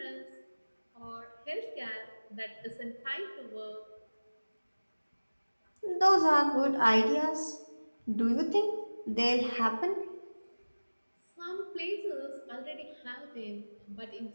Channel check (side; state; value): both; inverted; correlation -1.00